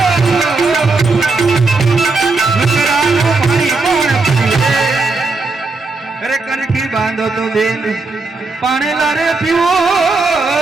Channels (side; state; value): left; quieter; 3.7 dB